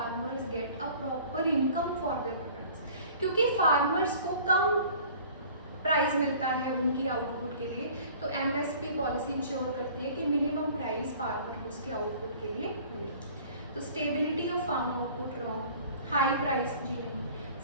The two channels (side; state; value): both; inverted; correlation -0.48